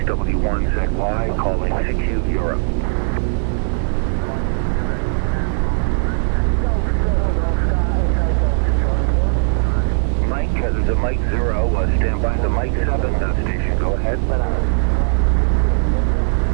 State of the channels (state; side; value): silent; left; 63 dB below the other